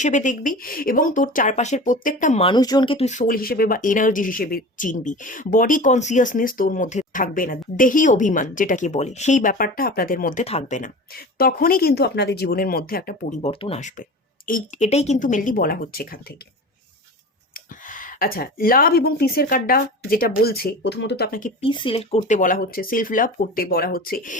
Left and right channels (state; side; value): normal; both; correlation 0.34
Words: দেখবি এবং তোর চারপাশের প্রত্যেকটা মানুষজনকে তুই সোল হিসেবে বা এনার্জি হিসেবে চিনবি। বডি কনসিয়াসনেস তোর মধ্যে থাকবে না, দেহি অভিমান যেটাকে বলে, সেই ব্যাপারটা আপনাদের মধ্যে থাকবে না। তখনই কিন্তু আপনাদের জীবনের মধ্যে একটা পরিবর্তন আসবে। এটাই কিন্তু মেনলি বলা হচ্ছে এখান থেকে। আচ্ছা, লাভ এবং পিসের কার্ডটা যেটা বলছে, প্রথমত তো আপনাকে পিস সিলেক্ট করতে বলা হচ্ছে, সেলফ লাভ করতে বলা হচ্ছে।